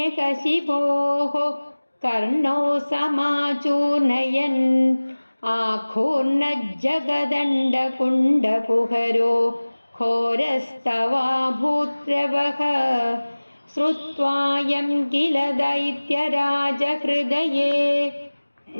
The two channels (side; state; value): both; inverted; correlation -1.00